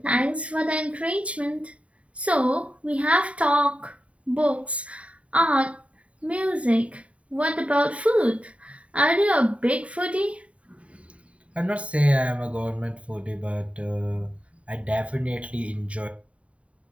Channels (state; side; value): late; left; 0.065 ms